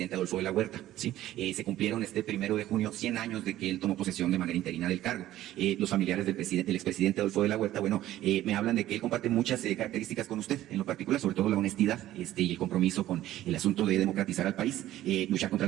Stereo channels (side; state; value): left; quieter; 14.0 dB